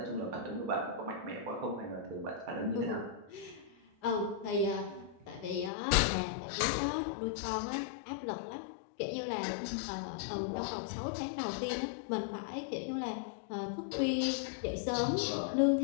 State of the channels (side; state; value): right; drops out; at 5.7 s